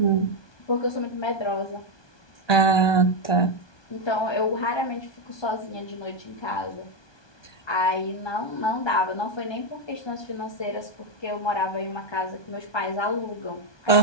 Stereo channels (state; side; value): late; right; 1.2 ms